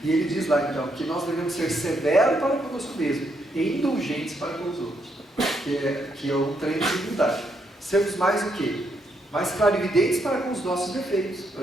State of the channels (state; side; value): normal; both; correlation 0.77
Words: E ele diz lá então que nós devemos ser severos para conosco mesmo e indulgentes para com os outros. que é um treino de humildade. Sermos mais o quê? Mais clarividentes para com os nossos defeitos,